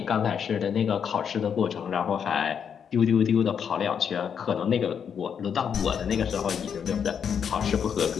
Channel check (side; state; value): right; quieter; 7.5 dB